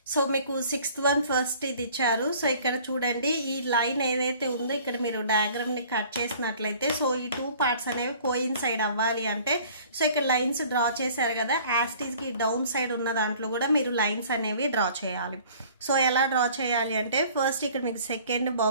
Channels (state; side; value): inverted; both; correlation -0.51